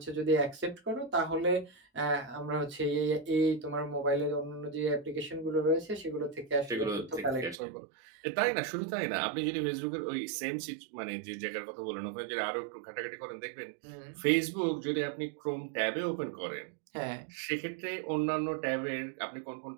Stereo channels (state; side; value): drops out; left; at 7.6 s